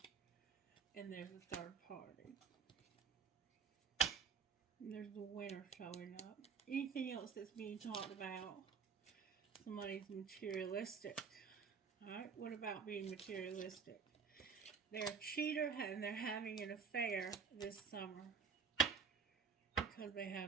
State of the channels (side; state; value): left; quieter; 5.8 dB